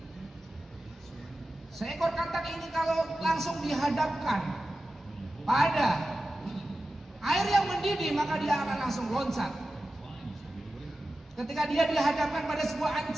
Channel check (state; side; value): normal; both; correlation 0.94